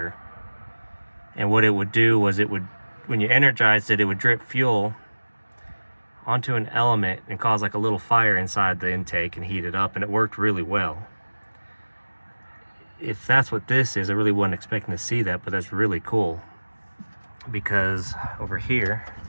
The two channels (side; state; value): both; inverted; correlation -1.00